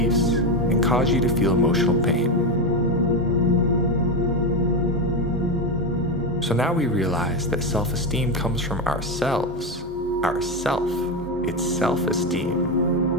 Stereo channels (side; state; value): both; normal; correlation 0.12